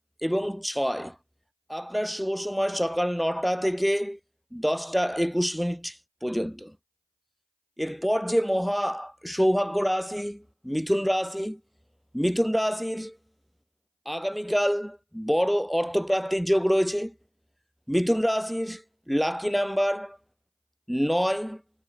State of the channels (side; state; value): both; identical; correlation 1.00